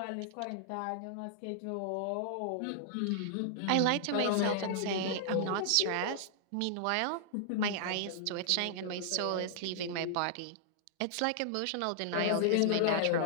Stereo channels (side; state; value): both; different; correlation -0.01